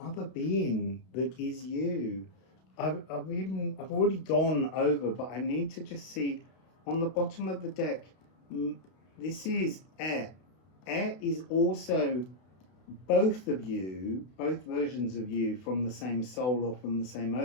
being that is you. I've already gone over, but I need to just see on the bottom of the deck. This is Air. Air is also both of you, both versions of you from the same soul or from the same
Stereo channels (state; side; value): late; right; 32 ms